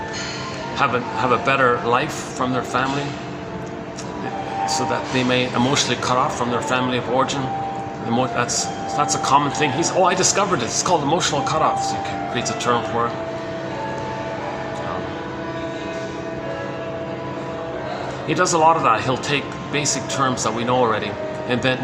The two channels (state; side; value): identical; both; correlation 1.00